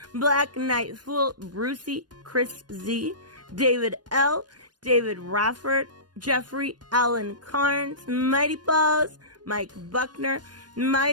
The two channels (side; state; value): left; late; 0.69 ms